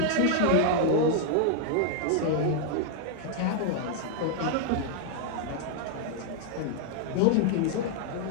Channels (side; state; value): both; different; correlation 0.00